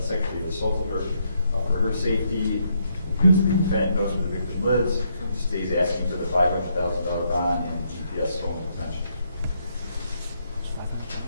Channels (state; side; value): inverted; both; correlation -0.75